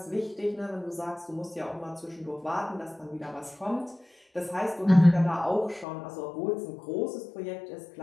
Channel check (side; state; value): right; drops out; at 5.9 s